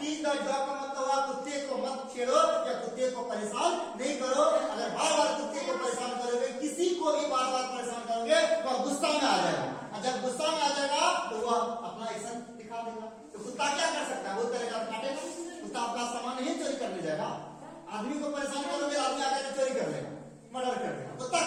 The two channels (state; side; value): identical; both; correlation 1.00